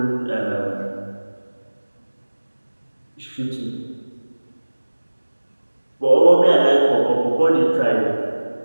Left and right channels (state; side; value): inverted; both; correlation -1.00